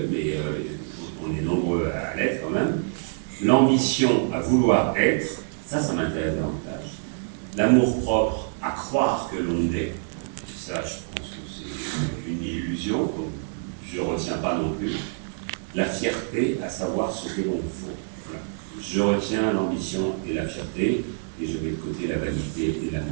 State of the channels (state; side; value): silent; left; 61 dB below the other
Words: mais on est nombreux à l'être quand même. L'ambition à vouloir être Ça m'intéresse davantage. L'amour-propre à croire que l'on est, ça, je pense que c'est une illusion, donc je ne retiens pas non plus. La fierté à savoir ce que l'on vaut. Voilà. Je retiens l'ambition et la fierté, et je mets de côté la vanité et